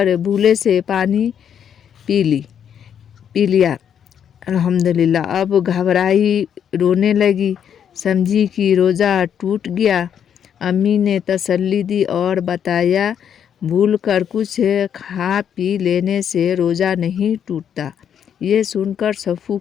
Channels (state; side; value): quieter; right; 8.6 dB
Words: بھولے سے پانی پی لیا۔ الحمدللہ۔ اب گھبرائی، رونے لگی، سمجھی کہ روزہ ٹوٹ گیا۔ امی نے تسلی دی اور بتایا، بھول کر کچھ کھا پی لینے سے روزہ نہیں ٹوٹتا۔ یہ سن کر صفو